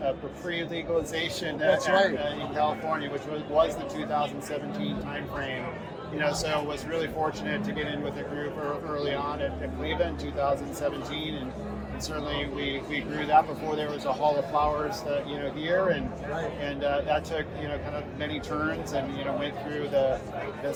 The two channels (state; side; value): identical; both; correlation 1.00